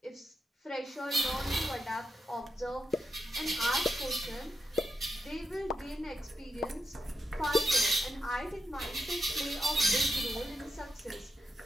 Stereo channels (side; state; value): both; normal; correlation 0.86